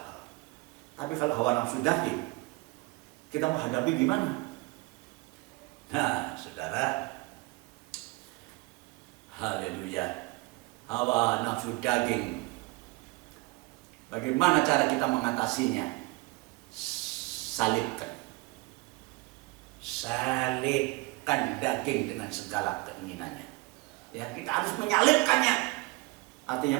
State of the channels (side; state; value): left; quieter; 24.3 dB